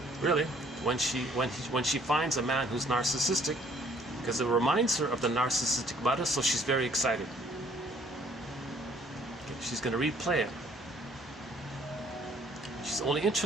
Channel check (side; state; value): both; normal; correlation 0.60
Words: really, when she finds a man who's narcissistic, because it reminds her of the narcissistic mother. So she's very excited. Okay, she's going to replay it. She's only